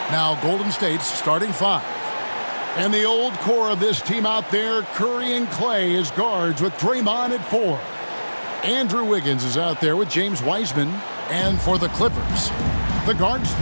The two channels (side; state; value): both; inverted; correlation -1.00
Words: Now, Golden State's starting five. And the old core of this team out there, Curry and Clay as guards with Draymond at 4. Andrew Wiggins is out there with James Wiseman. And for the Clippers, the guard